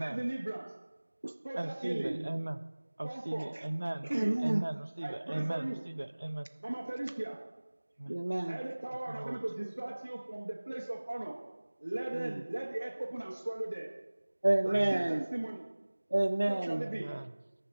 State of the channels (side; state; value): both; inverted; correlation -1.00